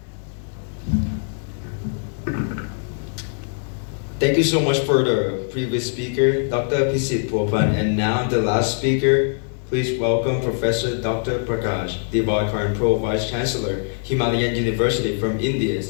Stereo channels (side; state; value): right; silent; 58 dB below the other